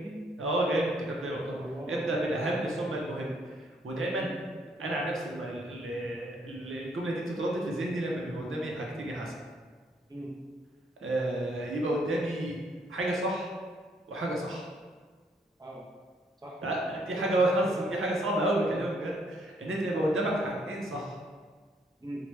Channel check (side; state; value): both; normal; correlation 0.69